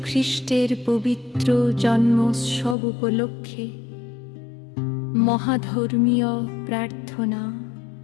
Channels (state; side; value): drops out; right; at 2.8 s